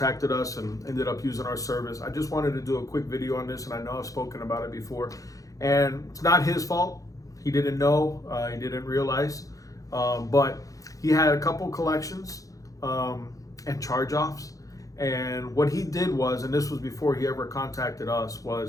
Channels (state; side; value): late; right; 0.17 ms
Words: us and ended up using our service. I just wanted to do a quick video on this, and I know I've spoken about it before, and it's not his fault. He didn't know, he didn't realize, but he had a couple collections and charge-offs. And what he did was, and this was before he ever contacted us,